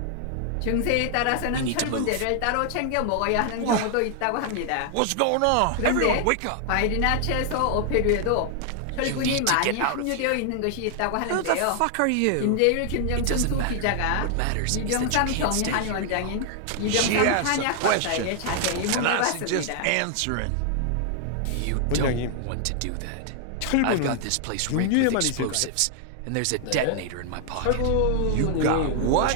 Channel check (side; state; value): both; different; correlation 0.00